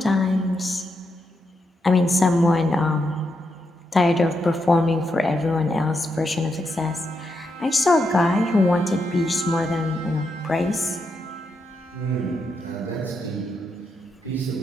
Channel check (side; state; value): both; normal; correlation 0.83